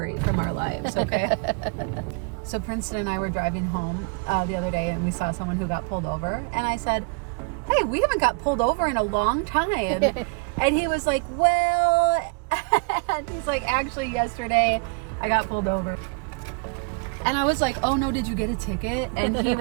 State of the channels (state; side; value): quieter; left; 34.1 dB